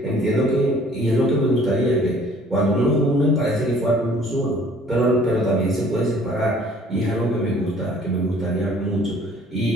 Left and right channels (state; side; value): normal; both; correlation 0.55